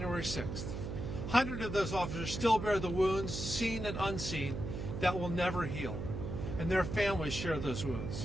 6th. Hundreds of those officers still bear the wounds, seen and unseen, that will never heal. And their families share those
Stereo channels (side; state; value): right; noise; hum, 5 dB below the sound